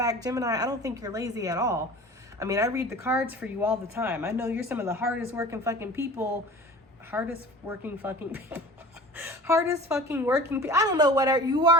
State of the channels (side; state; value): both; normal; correlation 0.40